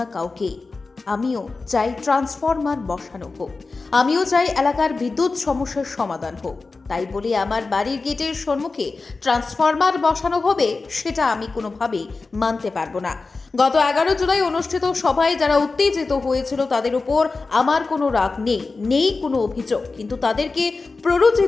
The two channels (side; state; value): right; quieter; 3.9 dB